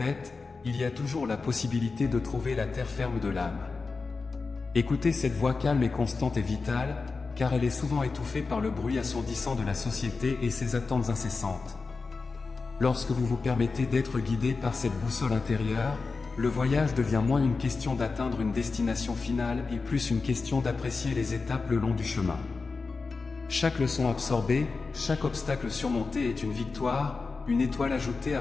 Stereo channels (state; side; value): quieter; right; 4.3 dB